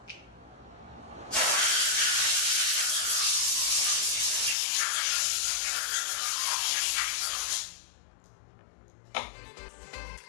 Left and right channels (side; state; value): right; drops out; at 4.5 s